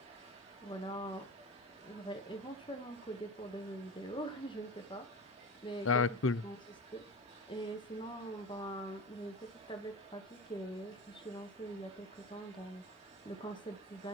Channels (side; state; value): both; normal; correlation 0.29